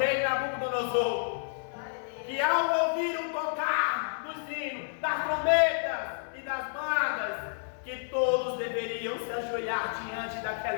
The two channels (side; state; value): right; silent; 58 dB below the other